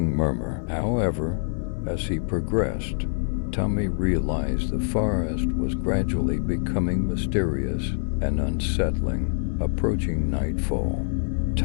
murmur. However, as he progressed, Tommy realized the forest was gradually becoming mysterious and unsettling. Approaching nightfall,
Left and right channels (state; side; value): silent; right; digital silence